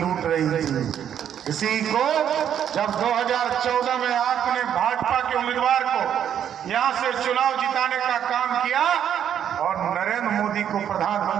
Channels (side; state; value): left; quieter; 9.4 dB